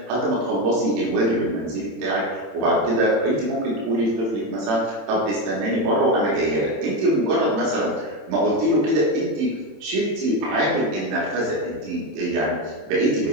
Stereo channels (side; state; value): left; late; 27 ms